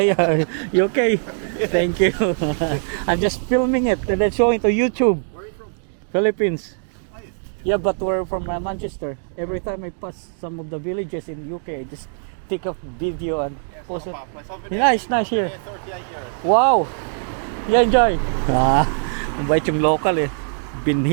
you okay? Thank you. I'm just filming it and then showing to YouTube. Where are you from? Philippines. Are you? Yeah, but we're from Manchester. Every time I pass some of the villages in UK, I just take a video and post it. Yeah, it's nice here. 38 years. Wow! You enjoy? Mabait yung local Been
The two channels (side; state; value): left; silent; digital silence